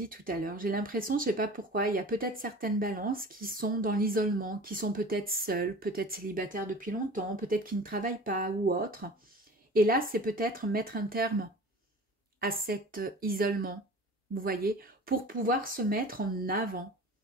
tout à l'heure. J'ai l'impression, je ne sais pas pourquoi, il y a peut-être certaines balances qui sont dans l'isolement, qui sont peut-être seules, peut-être célibataires depuis longtemps, peut-être qui ne travaillent pas ou autre. Et là, c'est peut-être mettre un terme à cet isolement, vous voyez, pour pouvoir se mettre en avant.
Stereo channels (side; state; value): both; normal; correlation 0.40